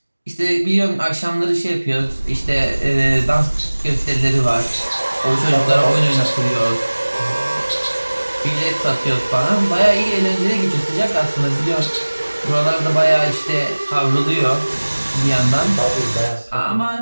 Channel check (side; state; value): both; inverted; correlation -1.00